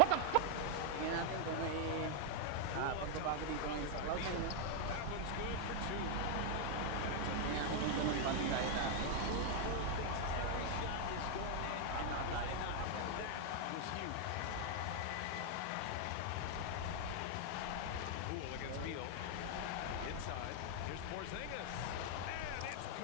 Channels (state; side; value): different; both; correlation 0.00